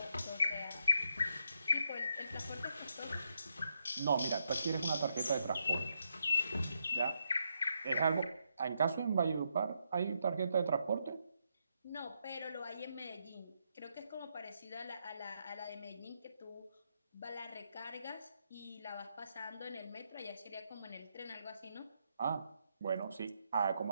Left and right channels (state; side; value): inverted; both; correlation -0.80